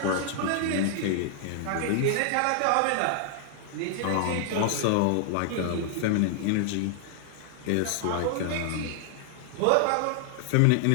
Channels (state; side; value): different; both; correlation -0.01